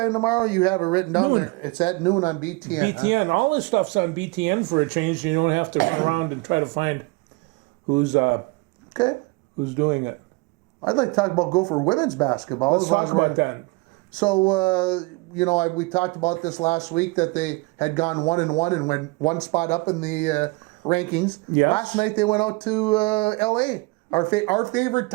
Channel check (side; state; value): left; quieter; 25.4 dB